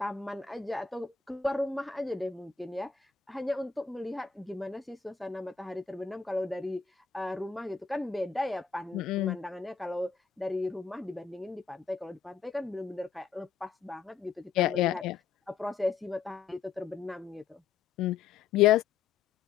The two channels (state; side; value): quieter; right; 6.1 dB